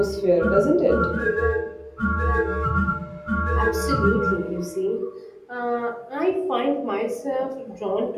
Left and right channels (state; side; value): identical; both; correlation 1.00